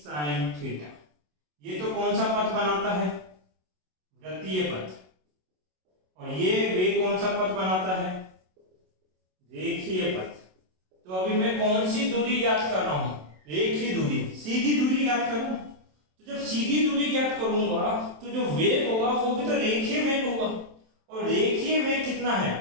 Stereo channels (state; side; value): late; left; 27 ms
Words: थीटा। ये तो कौन सा पथ बनाता है? वृत्तीय पथ। और ये वेग कौन सा पथ बनाता है? रेखीय पथ। तो अभी मैं कौन सी दूरी ज्ञात कर रहा हूं? रेखीय दूरी, सीधी दूरी ज्ञात कर रहा हूं। तो जब सीधी दूरी ज्ञात करूंगा तो जो वेग होगा वो भी तो रेखीय वेग होगा। और रेखीय वेग कितना है?